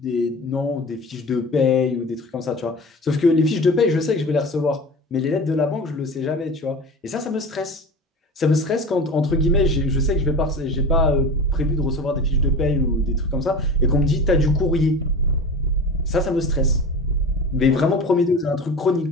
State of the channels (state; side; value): normal; both; correlation 0.33